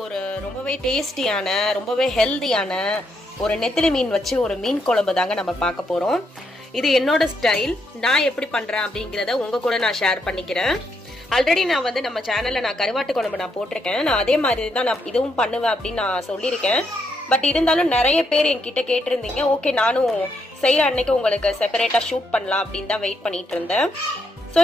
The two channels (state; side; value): normal; both; correlation 0.77